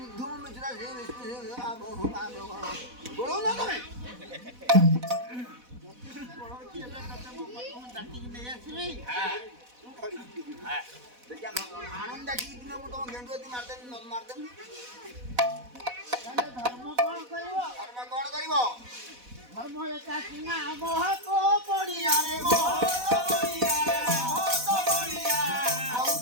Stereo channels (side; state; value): left; late; 4.1 ms